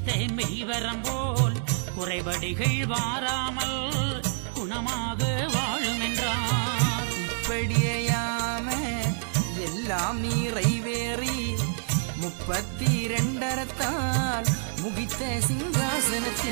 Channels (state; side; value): silent; left; digital silence